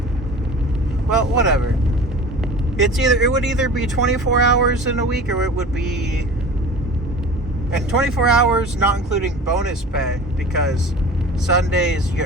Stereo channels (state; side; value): normal; both; correlation 0.39